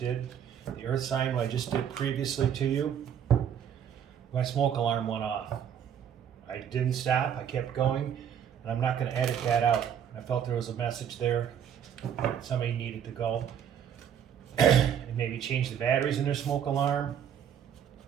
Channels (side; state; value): left; quieter; 8.8 dB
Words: the earth sign, what I just did previously to you, my smoke alarm went off. I didn't stop, I kept going, and I'm not going to edit that out. I felt there was a message there that somebody needed to go and maybe change the batteries in their smoke alarm